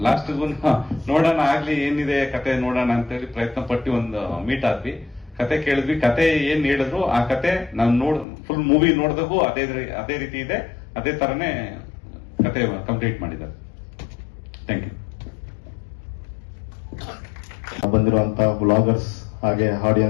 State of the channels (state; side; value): drops out; right; at 8.2 s